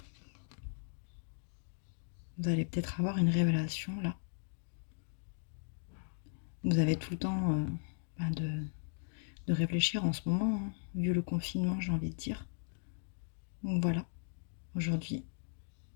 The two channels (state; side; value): silent; right; digital silence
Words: Vous allez peut-être avoir une révélation là. Vous avez tout le temps de réfléchir en ce moment, hein, vu le confinement, j'ai envie de dire. Donc voilà, aujourd'hui,